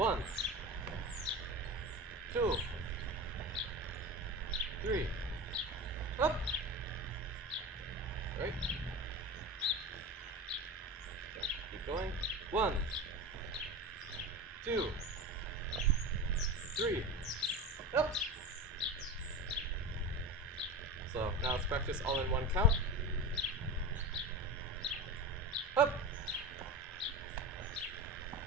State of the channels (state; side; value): normal; both; correlation 0.27